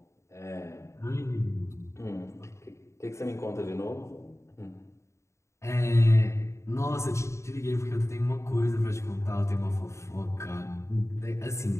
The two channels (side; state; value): right; late; 0.14 ms